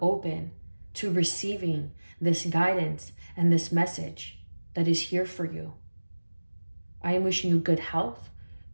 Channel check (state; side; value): inverted; both; correlation -1.00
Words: open to receiving this guidance and this message that is here for you. I am wishing you good health,